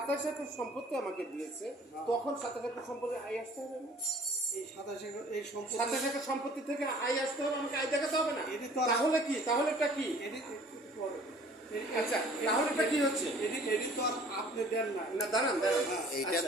একর সম্পত্তি আমাকে দিয়েছে, তখন 27 একর সম্পত্তি আয় আসতে হবে না? এই 27 একর সম্পত্তি থেকে আয় আসতে হবে, আমাকে আয় দেখাতে হবে না? তাহলে কি, তাহলে এটা কি? আচ্ছা, তাহলে এটা কি হচ্ছে? এটি তো আর আপনি দেন না। না, দাঁড়ান দাঁড়ান, এইটা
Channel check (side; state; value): both; normal; correlation 0.52